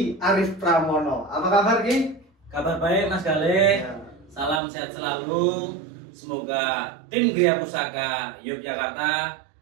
Arif Pramono. Apa kabar, Ki? Kabar baik, Mas Galih. Ya. Salam sehat selalu. Semoga tim Gria Pusaka Yogyakarta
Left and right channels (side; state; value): left; drops out; at 4.6 s